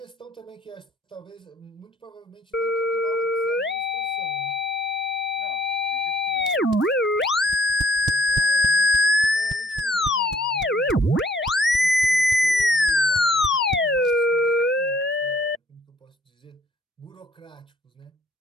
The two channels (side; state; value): both; normal; correlation 0.62